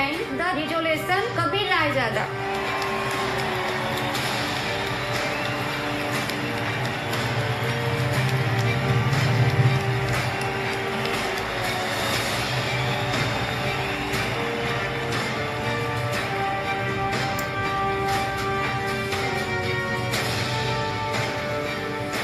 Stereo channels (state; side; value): identical; both; correlation 1.00